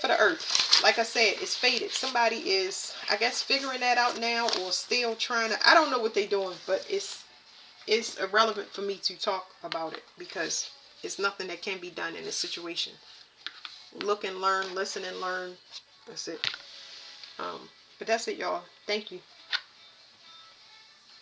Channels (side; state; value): both; identical; correlation 1.00